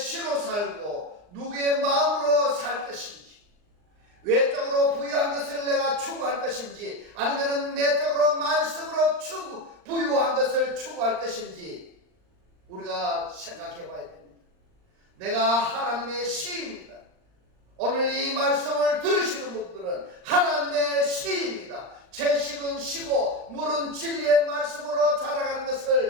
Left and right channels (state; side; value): late; left; 39 ms